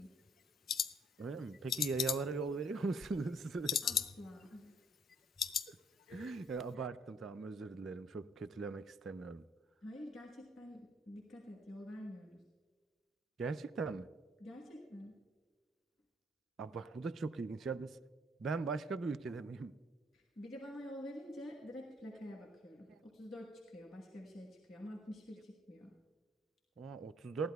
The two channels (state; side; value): normal; both; correlation 0.64